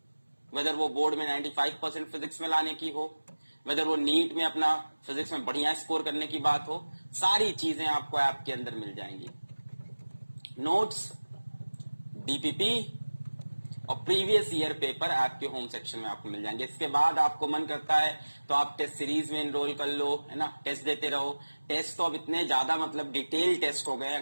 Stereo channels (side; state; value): both; inverted; correlation -1.00